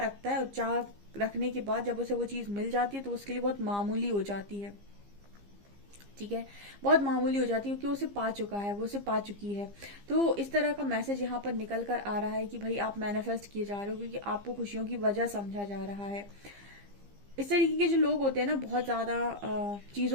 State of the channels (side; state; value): left; late; 15 ms